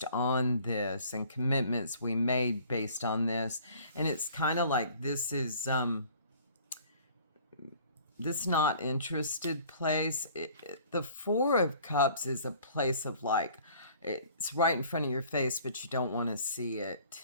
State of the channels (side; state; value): both; inverted; correlation -0.53